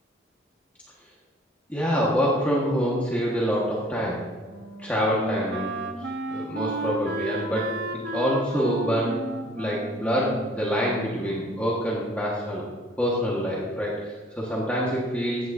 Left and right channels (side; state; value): both; normal; correlation 0.54